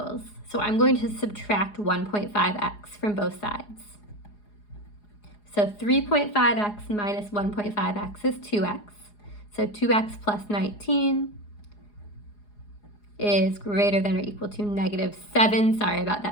So I'm going to subtract 1.5x from both sides. So 3.5x minus 1.5x is 2x. So 2x plus 19 is greater than or equal to -7. Sorry about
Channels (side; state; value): right; late; 4.8 ms